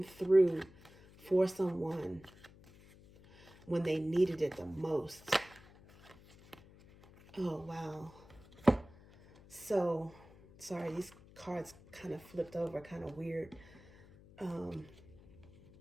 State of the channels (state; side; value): noise; left; hum, 23 dB below the sound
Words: through for someone when they needed it the most. Oh, wow. So, sorry, these cards kind of flipped over, kind of weird.